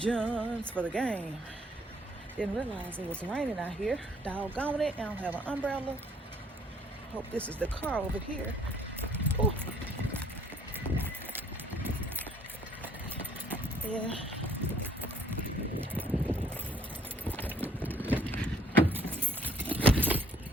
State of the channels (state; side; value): normal; both; correlation 0.64